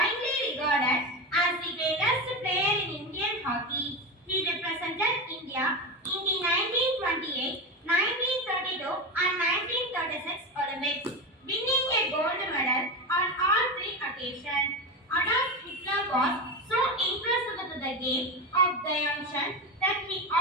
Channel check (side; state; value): both; normal; correlation 0.19